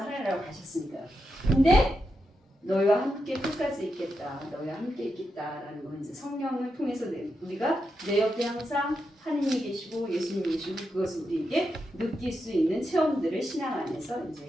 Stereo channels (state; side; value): normal; both; correlation 0.86